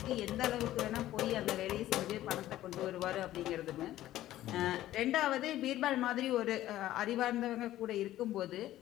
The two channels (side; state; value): right; quieter; 14.2 dB